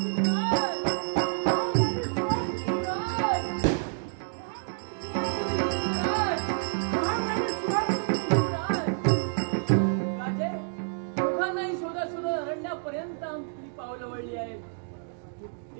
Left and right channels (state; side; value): silent; left; digital silence